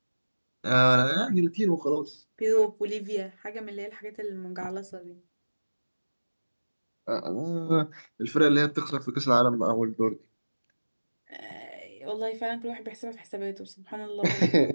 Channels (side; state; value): both; inverted; correlation -1.00